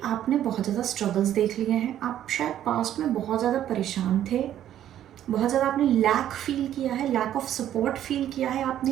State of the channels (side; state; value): left; quieter; 11.4 dB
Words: आपने बहुत ज़्यादा स्ट्रगल्स देख लिए हैं. आप शायद पास्ट में बहुत ज़्यादा परेशान थे, बहुत ज़्यादा आपने लैक फील किया है, लैक ऑफ सपोर्ट फील किया है,